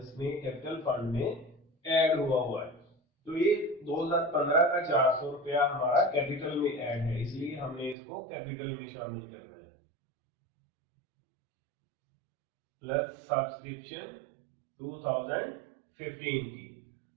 में कैपिटल फंड में ऐड हुआ है। तो ये 2015 का 400 रुपया हमारा कैपिटल में ऐड है, इसलिए हमने इसको कैपिटल में शामिल करना है। प्लस सब्सक्रिप्शन 2015 की,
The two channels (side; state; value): left; drops out; at 8.0 s